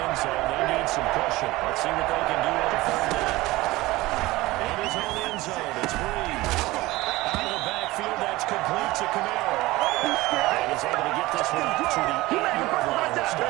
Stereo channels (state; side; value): quieter; left; 19.4 dB